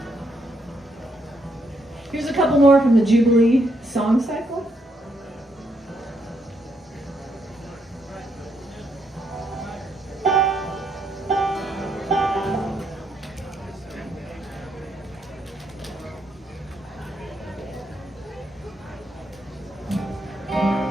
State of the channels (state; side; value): normal; both; correlation 0.76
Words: Here's a couple more from the Jubilee song cycle.